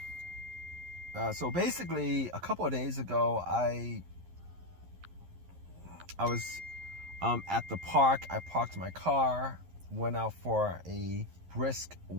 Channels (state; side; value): late; left; 11 ms